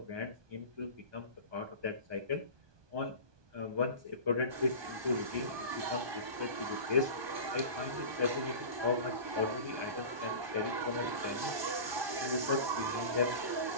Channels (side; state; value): left; late; 1.2 ms